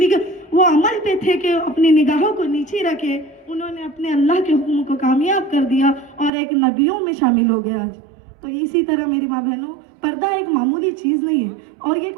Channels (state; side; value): drops out; left; at 6.3 s